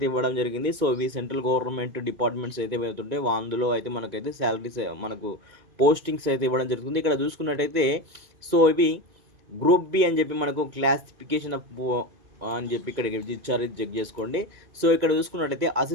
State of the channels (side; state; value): left; late; 2.5 ms